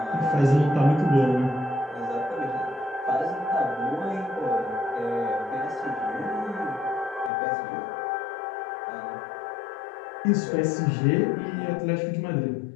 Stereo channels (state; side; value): drops out; right; at 7.3 s